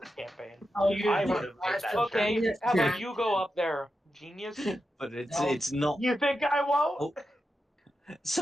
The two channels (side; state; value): both; normal; correlation 0.89